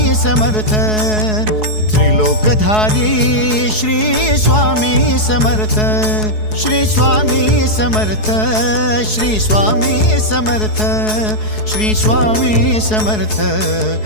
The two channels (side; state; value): right; late; 4.7 ms